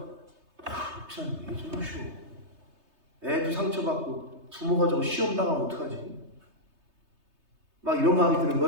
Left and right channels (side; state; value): left; late; 3.3 ms